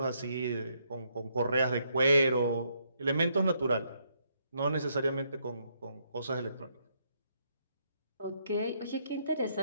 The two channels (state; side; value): inverted; both; correlation -0.74